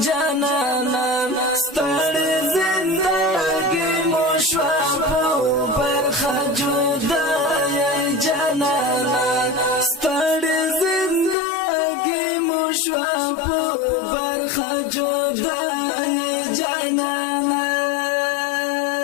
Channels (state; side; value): drops out; right; at 11.4 s